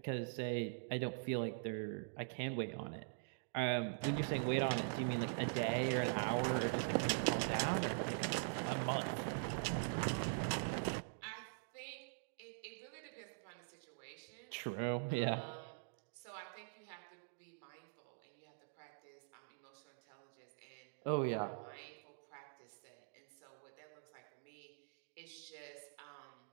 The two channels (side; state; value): left; silent; digital silence